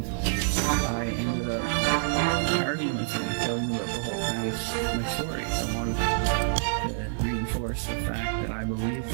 I ended up arguing with him, telling him about the whole past, my stories. I wanted to reinforce the fact that I believed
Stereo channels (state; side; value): silent; left; 58 dB below the other